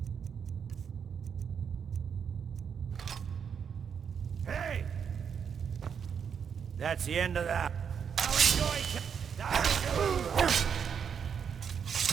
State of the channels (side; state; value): left; quieter; 7.2 dB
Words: Hey! That's the end of that. I'll enjoy...